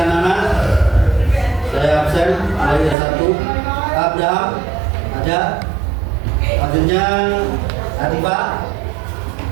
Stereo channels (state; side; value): drops out; left; at 3.0 s